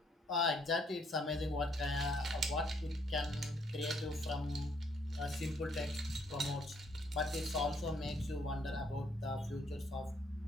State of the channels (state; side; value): normal; both; correlation 0.68